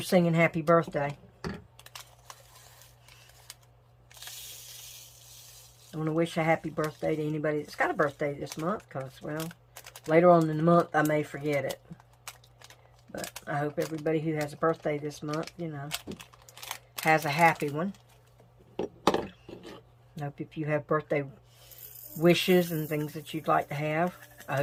singing happy birthday. I want to wish a happy birthday to anybody that's got a birthday this month, because, well, later on in the month I may forget it. But I hope everybody who has a birthday this month, you know, has a happy one. I hope if you have birthday wishes and things that you'd like to have, I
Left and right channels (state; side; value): identical; both; correlation 1.00